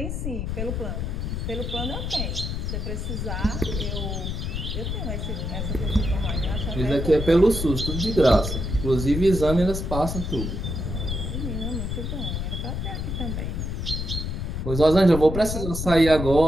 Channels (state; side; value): noise; left; rumble, 3 dB below the sound